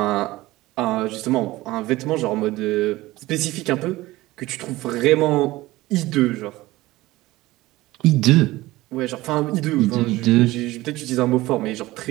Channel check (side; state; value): left; quieter; 18.4 dB